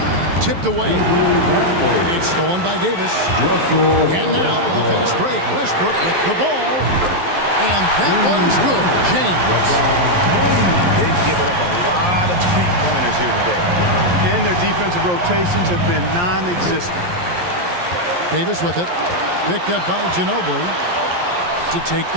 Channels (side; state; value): left; late; 11 ms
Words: Tipped away. It's stolen by Davis. And now the fast break. Westbrook with the ball. And that one's good. James. They've given up a lot of three-pointers here today. And their defensive rotations have been non-existent. Davis with it. Picked up by Ginobili to take